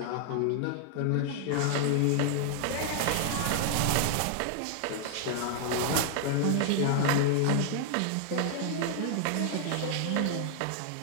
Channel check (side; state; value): both; different; correlation -0.01